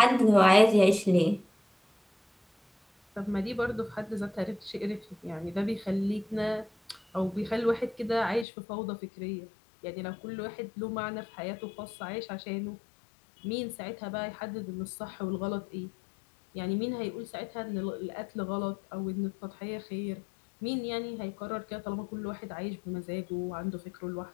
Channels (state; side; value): drops out; right; at 8.5 s